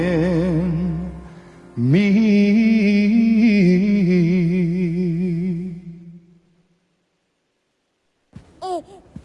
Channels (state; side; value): identical; both; correlation 1.00